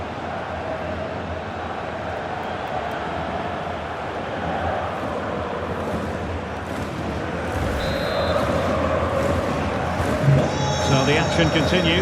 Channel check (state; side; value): identical; both; correlation 1.00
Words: So the action